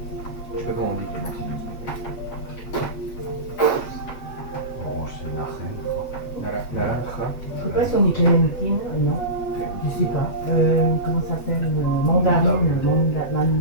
Je sais pas comment on dit Clémentine. Orange, c'est narine. Naranja. Je sais pas si on dit clémentine, non. Je sais pas. Comment ça s'appelle? Mandarine.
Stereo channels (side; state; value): right; late; 7.5 ms